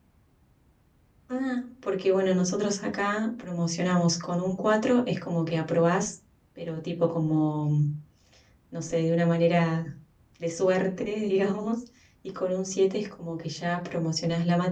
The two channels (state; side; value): identical; both; correlation 1.00